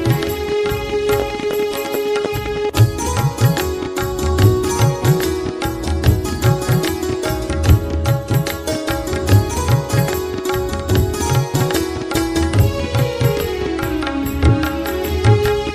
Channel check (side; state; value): both; identical; correlation 1.00